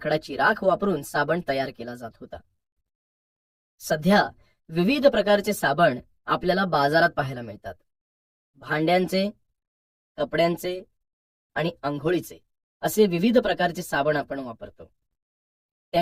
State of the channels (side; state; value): both; identical; correlation 1.00